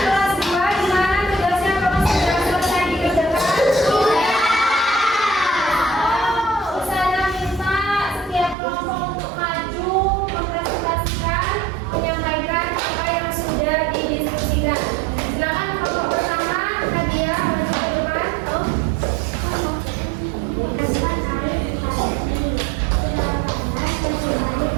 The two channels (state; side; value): drops out; left; at 8.6 s